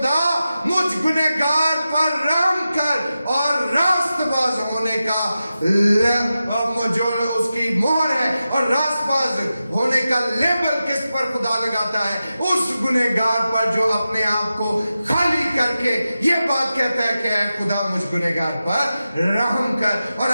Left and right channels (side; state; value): both; inverted; correlation -0.92